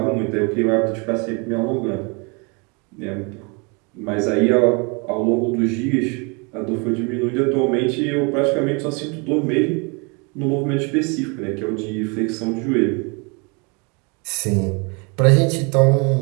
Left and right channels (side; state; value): left; quieter; 31.6 dB